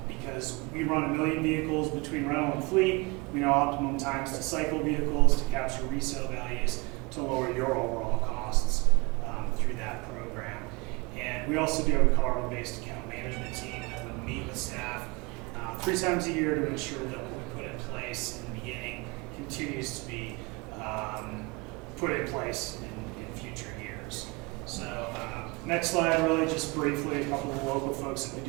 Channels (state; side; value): quieter; left; 26.6 dB